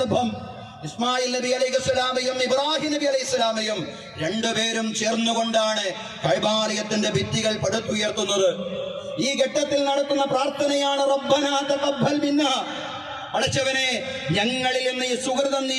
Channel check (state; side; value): identical; both; correlation 1.00